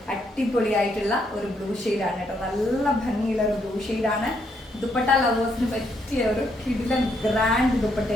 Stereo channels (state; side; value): normal; both; correlation 0.75